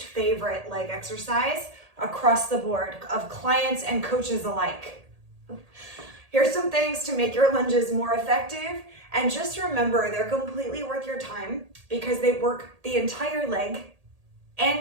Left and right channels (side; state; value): left; late; 1.8 ms